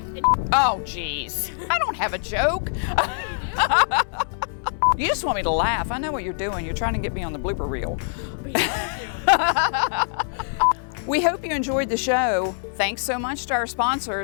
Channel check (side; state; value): right; silent; 61 dB below the other